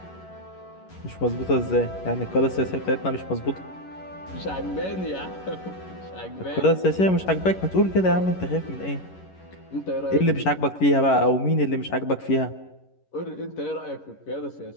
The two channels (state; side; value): late; right; 11 ms